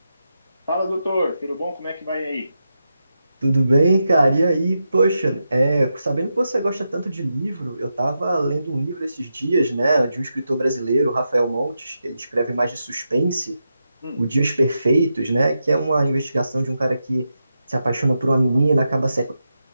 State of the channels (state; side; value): inverted; both; correlation -0.87